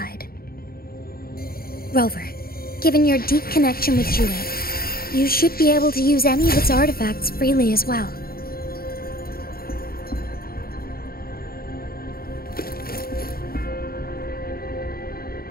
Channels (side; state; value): right; late; 0.44 ms